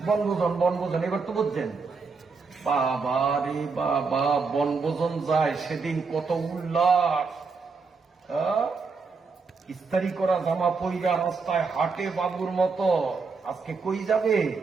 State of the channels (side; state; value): left; quieter; 4.7 dB